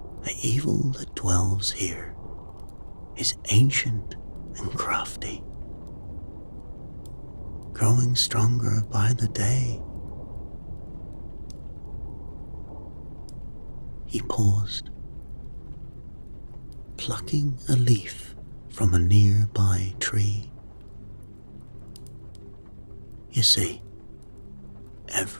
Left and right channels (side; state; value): both; inverted; correlation -1.00